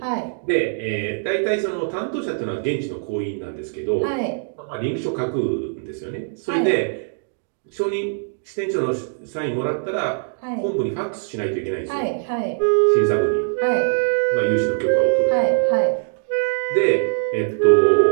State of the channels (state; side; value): silent; left; digital silence